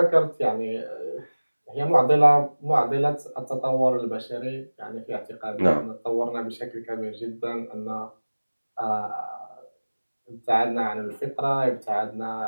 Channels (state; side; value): inverted; both; correlation -1.00